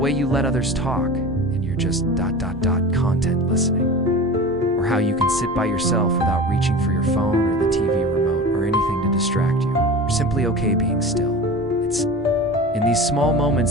you let others talk and you're just content listening. Or how you can sit by yourself without reaching for your phone or the TV remote or anything to distract you. You're simply okay being still. It's in these small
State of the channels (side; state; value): both; normal; correlation 0.33